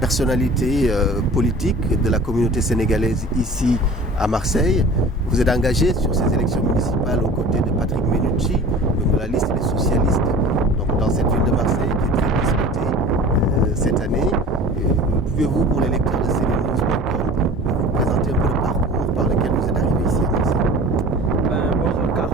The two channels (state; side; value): normal; both; correlation 0.41